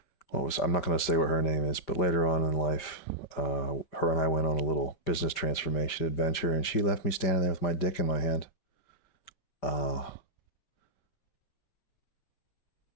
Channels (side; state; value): right; late; 5.2 ms